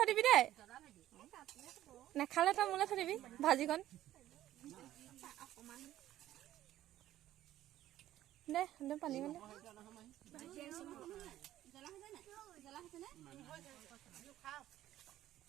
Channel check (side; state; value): left; quieter; 13.5 dB